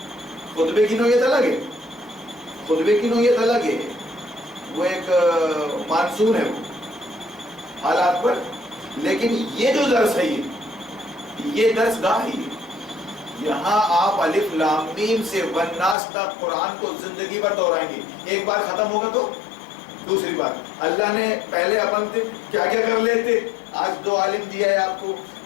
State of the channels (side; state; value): right; drops out; at 16.0 s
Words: خطبے کی نوعیت الگ ہے، خطبے کی نوعیت الگ ہے، وہ ایک مانسون ہے وہ حالات پر، لیکن یہ جو درس ہے یہ درس گاہ ہی ہے۔ یہاں آپ الف لام میم سے والناس تک قرآن کو زندگی بھر دہرائیں گے، ایک بار ختم ہوگا تو دوسری بار۔ اللہ نے پہلے اپن کیا کیا کر لیتے، آج 2 عالم دیا ہے آپ کو،